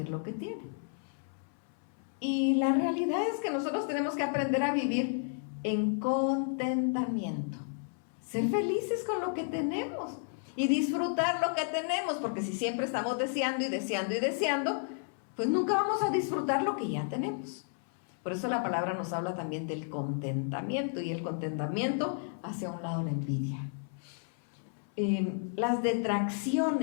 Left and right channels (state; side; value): silent; right; 56 dB below the other